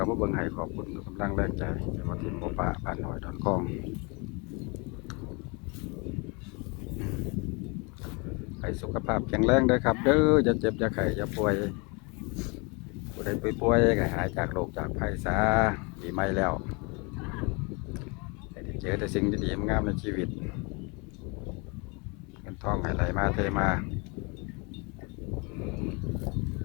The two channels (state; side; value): quieter; right; 30.5 dB